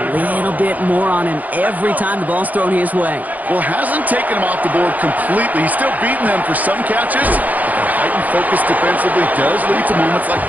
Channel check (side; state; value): left; late; 0.079 ms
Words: little bit more on him every time the ball's thrown his way. Well, hasn't taken him off the board completely. He's still beating them for some catches. But Heightened focus defensively does lead to moments like